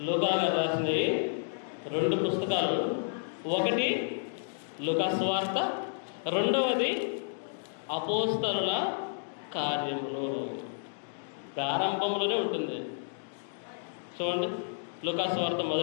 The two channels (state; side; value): silent; right; digital silence